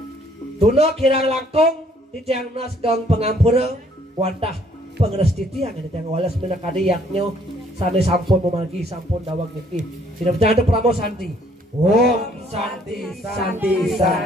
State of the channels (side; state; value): both; normal; correlation 0.63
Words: Tunuk hirang langkung titiang nas gang pengampura wantah pengeres titiang ini tiang walas menakadi yaknyo sane sampun memagi sampun dawang niki. Sina bercanda pramo santi. Om santi santi